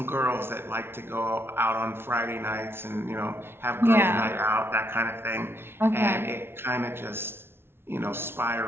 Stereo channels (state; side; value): late; left; 0.12 ms